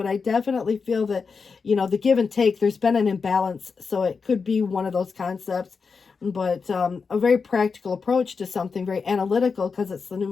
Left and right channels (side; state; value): right; quieter; 5.1 dB